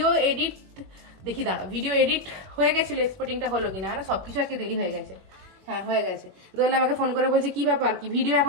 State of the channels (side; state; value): left; late; 21 ms